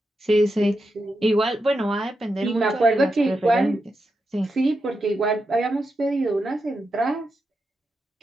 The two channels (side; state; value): both; normal; correlation 0.87